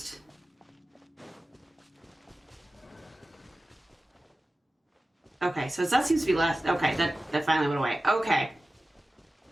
Okay, so that seems to be less. Okay, that finally went away. Okay.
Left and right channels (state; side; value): normal; both; correlation 0.96